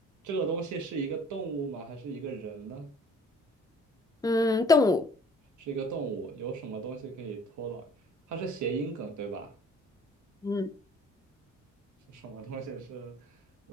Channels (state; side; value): normal; both; correlation 0.53